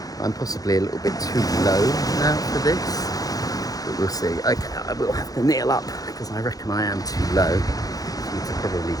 I'm possibly a little bit too low now for this, but we'll see. Okay, I will have to kneel up because I reckon I am too low for you to probably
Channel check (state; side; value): late; right; 0.18 ms